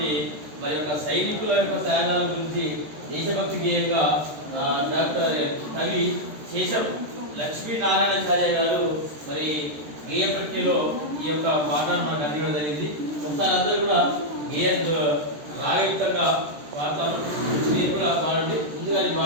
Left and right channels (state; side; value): late; left; 13 ms